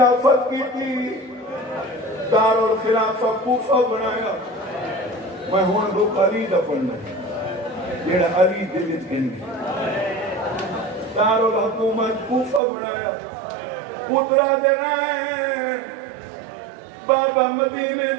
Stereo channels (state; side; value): drops out; left; at 12.6 s